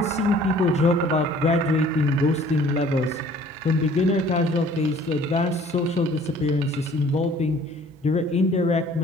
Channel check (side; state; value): both; normal; correlation 0.54